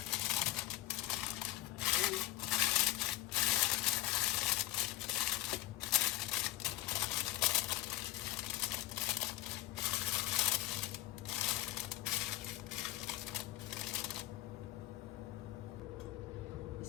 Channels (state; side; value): quieter; right; 16.2 dB